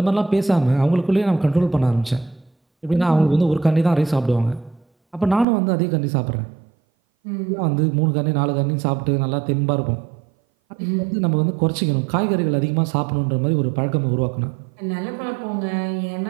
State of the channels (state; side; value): drops out; left; at 5.5 s